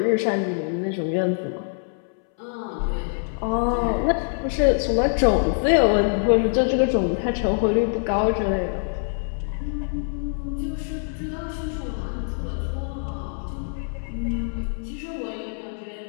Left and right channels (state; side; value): silent; right; 62 dB below the other